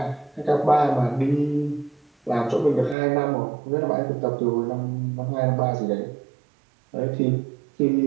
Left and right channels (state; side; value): drops out; left; at 3.0 s